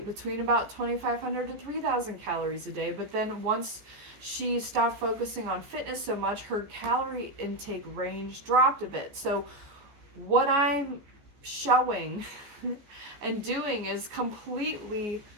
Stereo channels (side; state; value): left; late; 14 ms